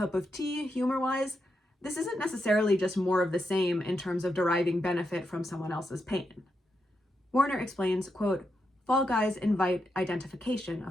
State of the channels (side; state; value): both; normal; correlation 0.84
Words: of tea humor-wise, this isn't necessarily just more of the same in terms of deriving benefit from someone else's pain. Warner explains, quote, Fall Guys invite identification,